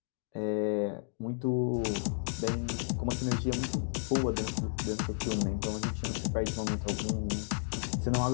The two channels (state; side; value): silent; right; digital silence